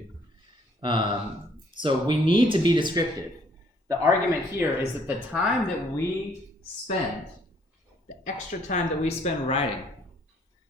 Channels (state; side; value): normal; both; correlation 0.63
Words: So we need to be descriptive. The argument here is that the time that we spend, the extra time that we spend writing,